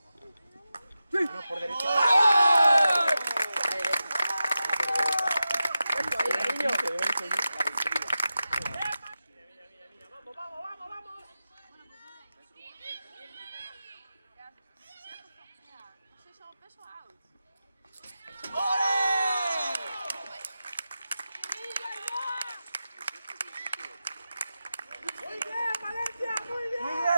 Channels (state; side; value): inverted; both; correlation -0.92